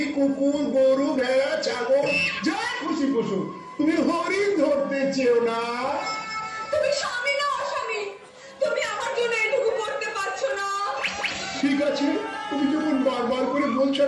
কুকুর, গরু, ভেড়া, ছাগল যা খুশি পশু, তুমি হরিণ ধরতে চেও না। তুমি স্বামী না অস্বামী? তুমি আমার জন্য এটুকু করতে পারছো না? ঠিক আছে, তুমি যখন বারবার করে বলছো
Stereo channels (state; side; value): identical; both; correlation 1.00